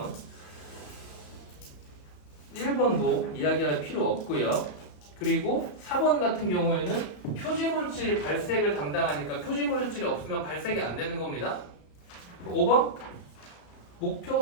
1번도 이야기할 필요 없고요. 그리고 4번 같은 경우에는 표지물질이 발색을 담당하니까 표지물질이 없으면 발색이 안 되는 겁니다. 5번 목표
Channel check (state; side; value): late; right; 34 ms